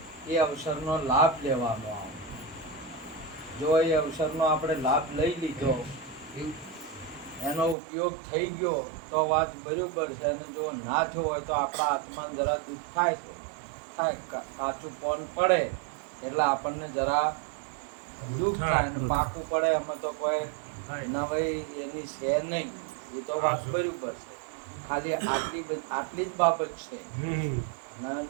એ અવસરનો લાભ લેવાનો આવે. જો એ અવસરનો આપણે લાભ લઈ લીધો, એનો ઉપયોગ થઈ ગયો તો વાત બરાબર છે. અને જો ના થયો હોય તો આપણા આત્માને જરા દુઃખ થાય છે, કાચું પોન પડે એટલે આપણને જરા દુઃખ થાય. પાકું પડે એમાં તો કોઈ નવાઈ એની છે નહીં. એ તો વાત બરાબર છે. ખાલી આટલી જ બાબત છે.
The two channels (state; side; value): drops out; left; at 7.8 s